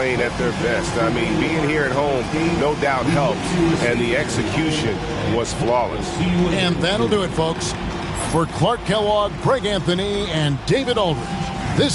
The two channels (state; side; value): identical; both; correlation 1.00